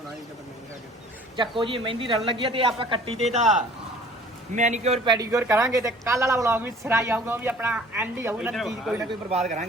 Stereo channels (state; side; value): normal; both; correlation 0.50